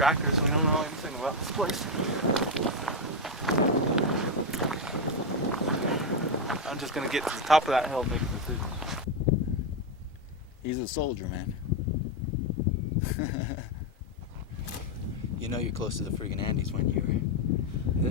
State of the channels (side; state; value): both; normal; correlation 0.06